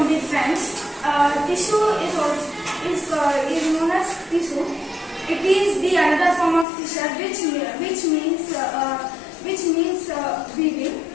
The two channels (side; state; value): right; drops out; at 6.7 s